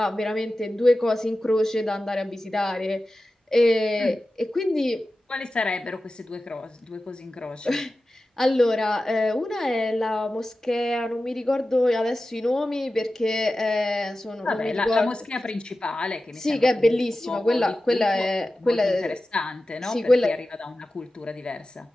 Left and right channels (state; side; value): normal; both; correlation 0.94